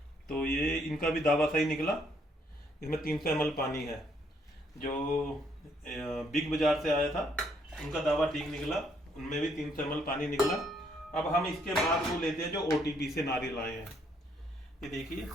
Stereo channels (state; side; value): normal; both; correlation 0.70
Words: तो ये इनका भी दावा सही निकला, इसमें 300 ml पानी है। जो बिग बाजार से आया था उनका दावा ठीक निकला, उनमें भी 300 ml पानी निकला। अब हम इसके बाद वो लेते हैं जो OTP से नारियल आए हैं। ये देखिए